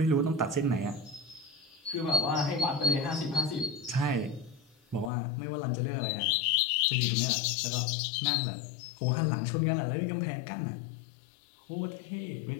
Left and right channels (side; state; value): right; drops out; at 5.1 s